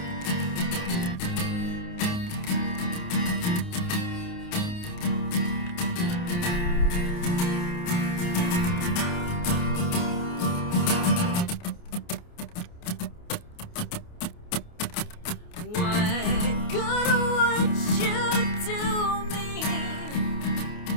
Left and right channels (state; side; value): late; right; 28 ms